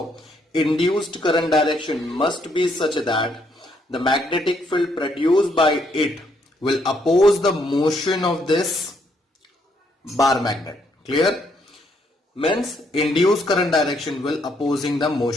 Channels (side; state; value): both; normal; correlation 0.72